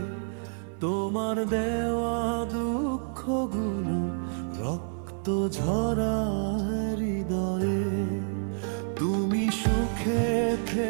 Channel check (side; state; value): left; silent; 56 dB below the other